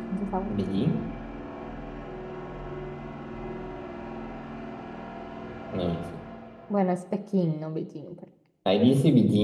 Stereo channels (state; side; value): identical; both; correlation 1.00